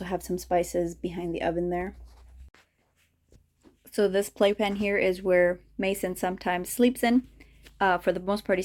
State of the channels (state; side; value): identical; both; correlation 1.00